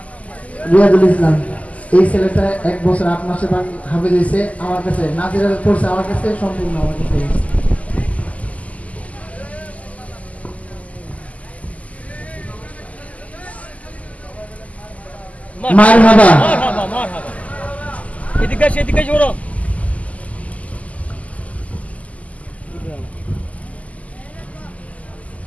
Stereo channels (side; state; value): right; late; 0.071 ms